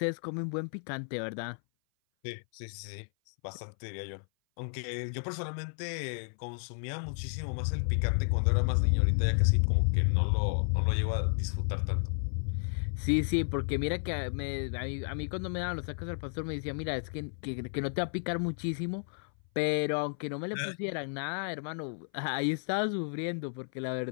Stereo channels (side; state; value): right; silent; 56 dB below the other